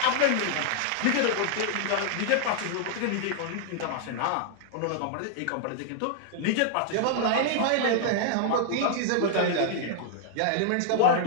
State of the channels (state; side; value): different; both; correlation -0.01